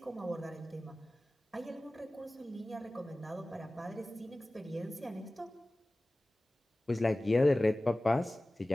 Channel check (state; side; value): normal; both; correlation 0.97